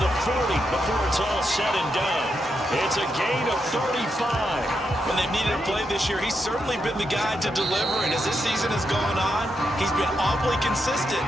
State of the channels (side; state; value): both; normal; correlation 0.83